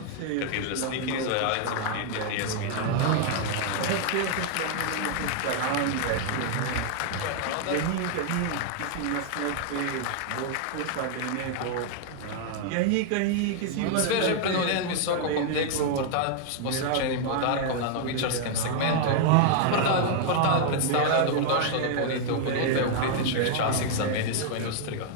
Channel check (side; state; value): both; different; correlation 0.00